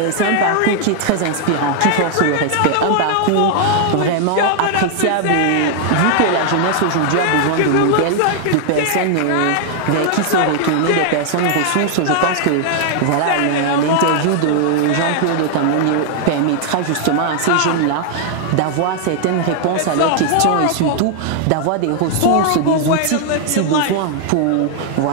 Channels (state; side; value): different; both; correlation 0.00